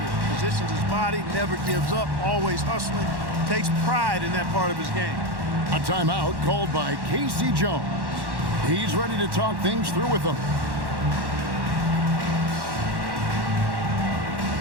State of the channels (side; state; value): left; late; 1.1 ms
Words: it. Positions his body, never gives up, always hustling. Takes pride in that part of his game. A timeout called by Casey Jones. He's ready to talk things through with them.